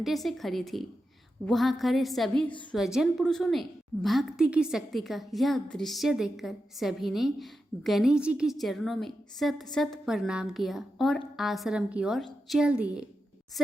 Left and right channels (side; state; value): both; normal; correlation 0.89